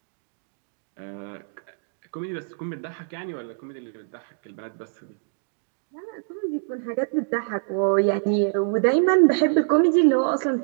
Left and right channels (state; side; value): silent; left; digital silence